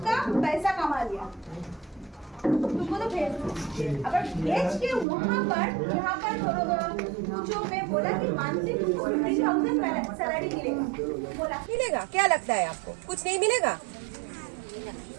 पैसा कमा लिया, तुमको तो भेज। अगर भेज के वहाँ पर यहाँ पर जो मैं बोला कि मंथली तुमको 50,000 सैलरी मिलेगा, बोला मिलेगा। क्या लगता है आपको कुछ नहीं मिलेगा?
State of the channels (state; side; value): drops out; left; at 5.1 s